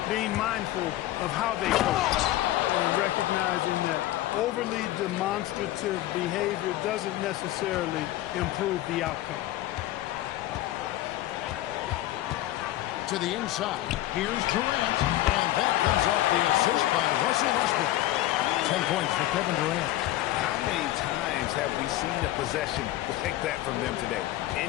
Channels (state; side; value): quieter; right; 15.3 dB